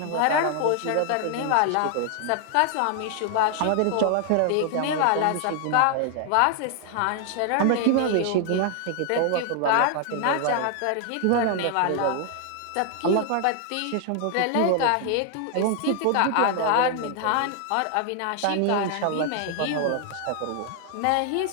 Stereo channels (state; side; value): different; both; correlation 0.00